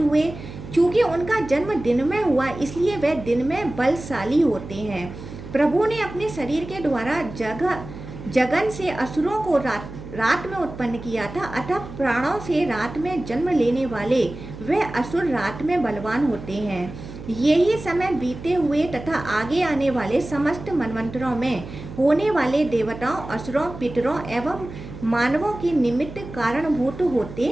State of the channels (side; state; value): right; noise; hum, 13 dB below the sound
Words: हुए। चूंकि उनका जन्म दिन में हुआ, इसलिए वे दिन में बलशाली होते हैं। प्रभु ने अपने शरीर के द्वारा जगन से असुरों को रात में उत्पन्न किया था, अतः प्राणों से रात में जन्म लेने वाले वे असुर रात में बलवान होते हैं। यही समय बीते हुए तथा आगे आने वाले समस्त मनवंतरों में होने वाले देवताओं, असुरों, पितरों एवं मानवों के निमित्त कारणभूत होते